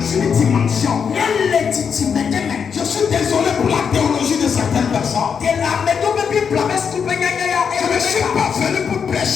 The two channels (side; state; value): right; quieter; 6.7 dB